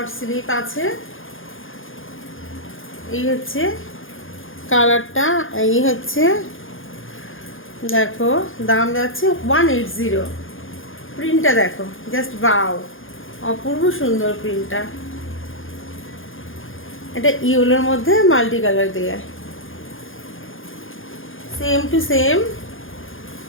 স্লিভ আছে। এই হচ্ছে কালারটা, এই হচ্ছে দেখো, দাম যাচ্ছে 180। প্রিন্টটা দেখো, জাস্ট বাও, অপূর্ব সুন্দর প্রিন্টটা। এটা ইয়েলোর মধ্যে মাল্টি কালার দেয়া, সেম টু সেম।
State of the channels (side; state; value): right; late; 0.59 ms